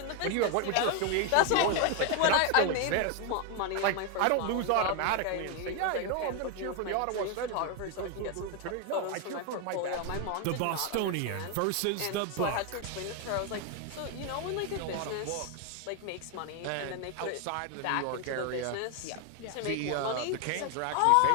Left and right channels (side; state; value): both; different; correlation 0.01